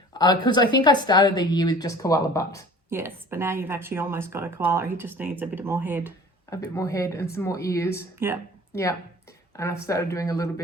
Because I think I started the year with just koala butt. Yes, but now you've actually almost got a koala. He just needs a bit more head. A bit more head and some more ears. Yeah. Yeah. And I've started doing a little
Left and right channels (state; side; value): normal; both; correlation 0.46